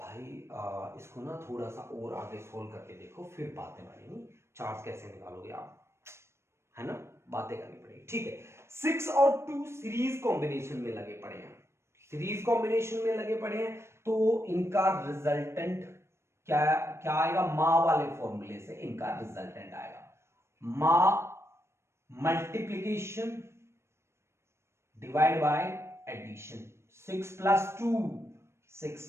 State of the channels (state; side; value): late; left; 0.13 ms